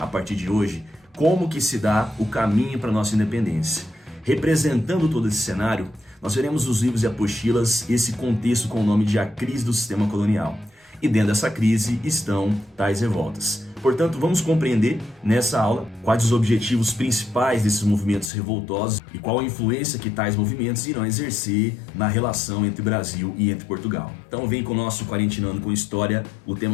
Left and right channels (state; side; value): drops out; right; at 18.3 s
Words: partir de hoje, como que se dá o caminho para a nossa independência. Representando todo esse cenário, nós veremos nos livros e apostilas esse contexto com o nome de A Crise do Sistema Colonial. E dentro dessa crise estão tais revoltas. Portanto, vamos compreender nessa aula quais os objetivos principais desses movimentos revoltosos e qual a influência que tais movimentos irão exercer na relação entre Brasil e entre Portugal. Então vem com o nosso Quarentinando com História, o